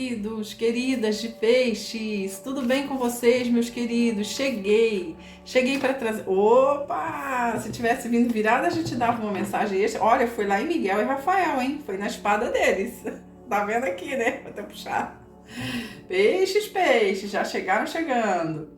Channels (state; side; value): identical; both; correlation 1.00